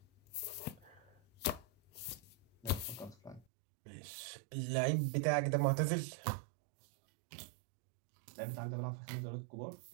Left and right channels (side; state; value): left; drops out; at 3.5 s